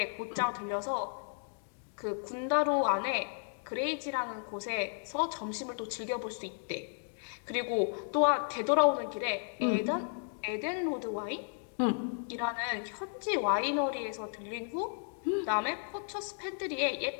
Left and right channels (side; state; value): right; silent; digital silence